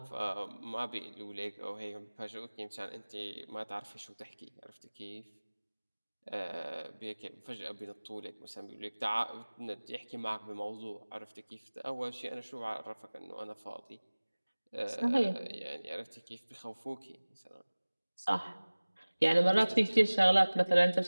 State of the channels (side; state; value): both; inverted; correlation -1.00